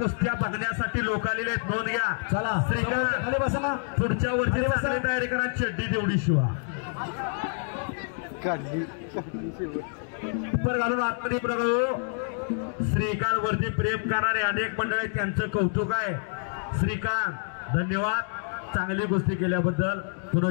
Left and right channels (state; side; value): silent; right; 60 dB below the other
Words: बघण्यासाठी लोक आलेले आहेत नोंद घ्या चला श्रीकांत खाली बसा ना पुढच्या वर्षी चांगली तयारी करा चड्डी तेवढी शिवा काढली पर घालून आतमध्ये प्रभू श्रीकांत वरती प्रेम करणारे अनेक मंडळ आहेत त्यांचं कौतुक आहे श्रीकांत धन्यवाद चांगली गोष्टी केल्याबद्दल पुन्हा